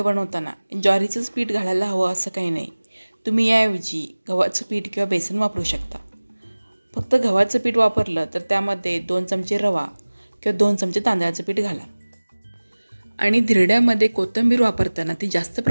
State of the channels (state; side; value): inverted; both; correlation -1.00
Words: बनवताना ज्वारीचंच पीठ घालायला हवं असं काही नाही. तुम्ही याऐवजी गव्हाचं पीठ किंवा बेसन वापरू शकता. फक्त गव्हाचं पीठ वापरलं तर त्यामध्ये 2 चमचे रवा किंवा 2 चमचे तांदळाचं पीठ घाला. आणि धिरड्यामध्ये कोथिंबीर वापरताना ती जास्त